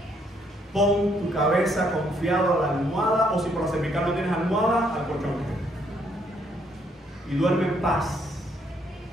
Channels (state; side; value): normal; both; correlation 0.70